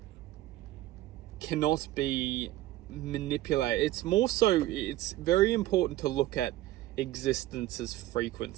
cannot be manipulated. It's very important to look at existence's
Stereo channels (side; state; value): left; quieter; 15.3 dB